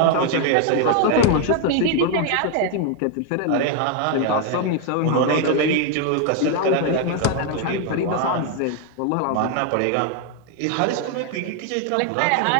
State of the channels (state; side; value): different; both; correlation 0.01